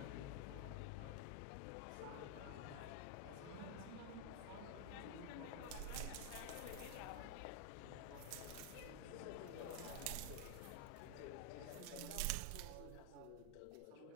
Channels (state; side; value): different; both; correlation 0.00